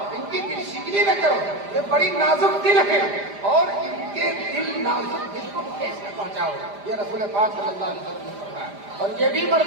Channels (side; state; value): left; late; 5.0 ms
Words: ان کی دل شکنی نہ کرو, یہ بڑی نازک دل ہے اور ان کے دل نازک دل کو ٹھیس نہ پہنچاؤ. یہ رسول پاک صلی اللہ علیہ وسلم نے فرمایا. اور یہ بھی